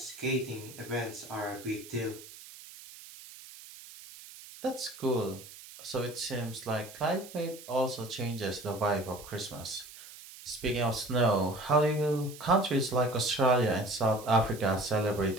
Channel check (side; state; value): right; noise; hiss, 17 dB below the sound